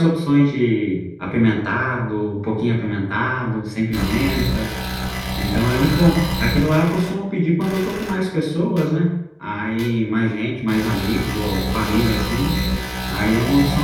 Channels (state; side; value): identical; both; correlation 1.00